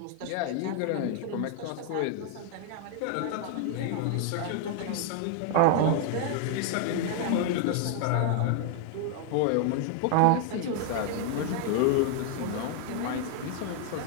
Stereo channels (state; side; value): different; both; correlation 0.00